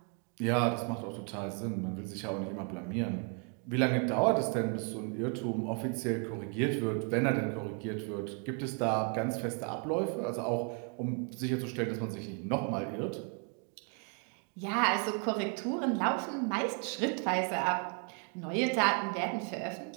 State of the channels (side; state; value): left; quieter; 38.6 dB